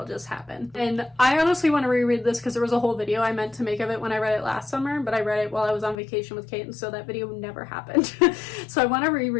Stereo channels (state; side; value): drops out; right; at 6.0 s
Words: just happened. And I honestly want to reread this because there was a whole video I meant to make of it when I read it last summer, but I read it while I was on vacation with Kate, and so that video never happened. So I want to